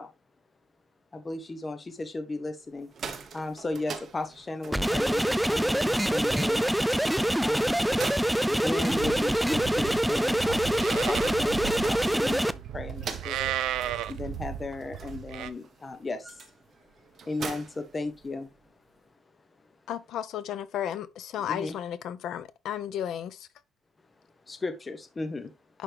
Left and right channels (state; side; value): normal; both; correlation 0.91